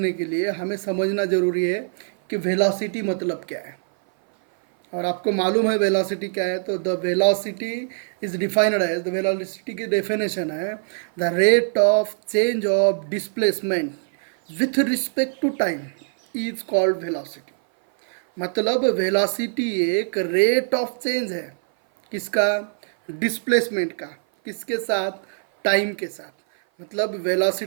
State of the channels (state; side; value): silent; left; 57 dB below the other